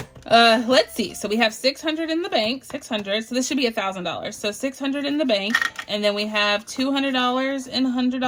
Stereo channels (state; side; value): identical; both; correlation 1.00